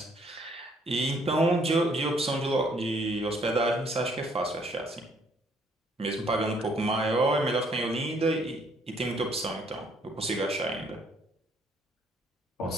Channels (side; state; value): both; normal; correlation 0.65